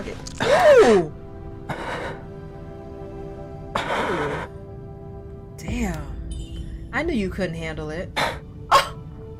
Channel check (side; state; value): both; identical; correlation 1.00